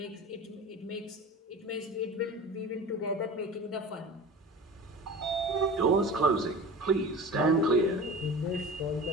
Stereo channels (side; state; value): both; normal; correlation 0.36